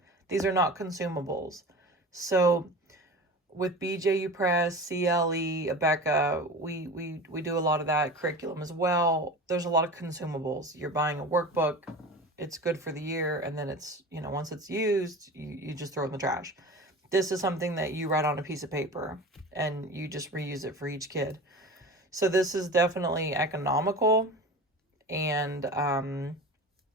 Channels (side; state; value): both; normal; correlation 0.34